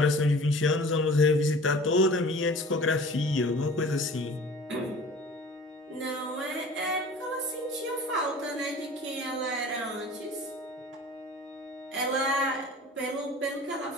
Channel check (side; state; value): both; normal; correlation 0.44